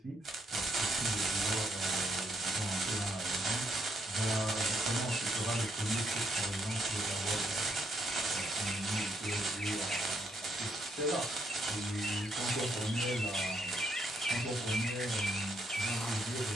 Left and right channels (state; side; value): normal; both; correlation 0.75